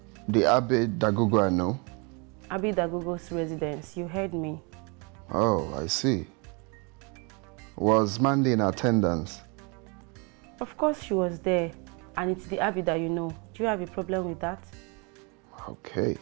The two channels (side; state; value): left; quieter; 31.9 dB